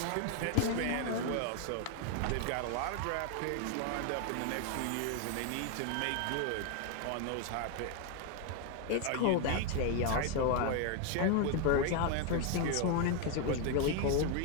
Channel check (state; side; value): different; both; correlation 0.01